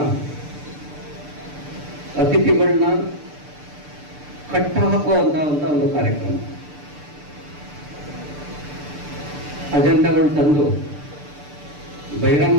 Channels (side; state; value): left; late; 6.8 ms